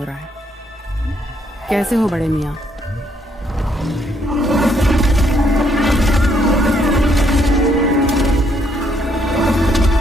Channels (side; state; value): both; normal; correlation 0.71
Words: रहा है। कैसे हो बड़े मियाँ?